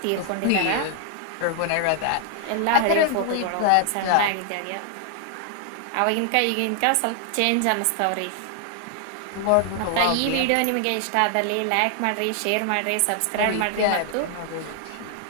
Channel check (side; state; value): both; different; correlation 0.00